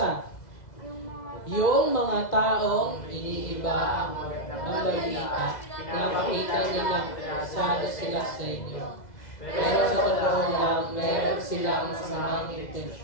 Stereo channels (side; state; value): right; late; 2.0 ms